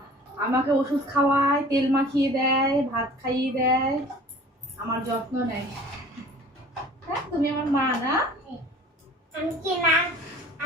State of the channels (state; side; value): normal; both; correlation 0.47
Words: আমাকে ওষুধ খাওয়ায়, তেল মাখিয়ে দেয়, ভাত খাইয়ে দেয়, আমার যত্ন নেয়। হ্যাঁ, তুমি আমার মা না?